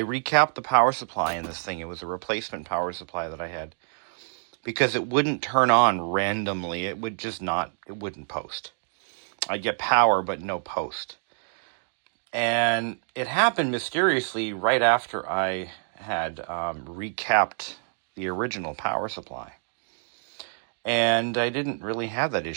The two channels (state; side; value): silent; left; digital silence